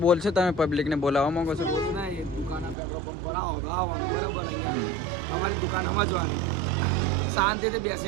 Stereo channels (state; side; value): drops out; left; at 2.8 s